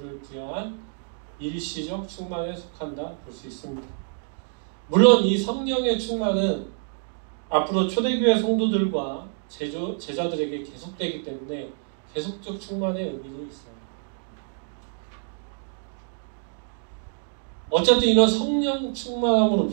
부여한 일시적 충만에 속한다 볼 수 있습니다. 물론 이 성령의 충만은 앞으로 초대교회 성도들과 제자들에게 계속되기 때문에 계속적 충만의 의미도 있어요. 어쨌든 이런 성령 충만함으로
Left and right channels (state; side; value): silent; left; digital silence